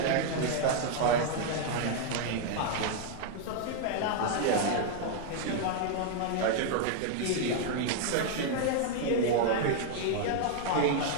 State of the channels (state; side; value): different; both; correlation 0.00